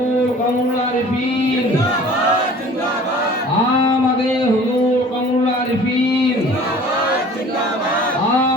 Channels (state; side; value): normal; both; correlation 0.47